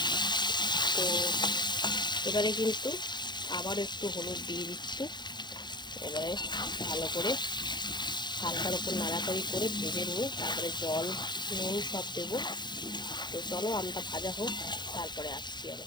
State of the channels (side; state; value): right; late; 0.21 ms